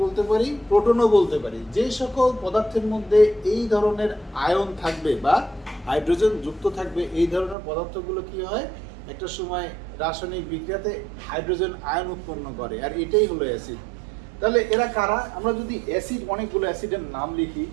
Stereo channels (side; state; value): left; drops out; at 7.6 s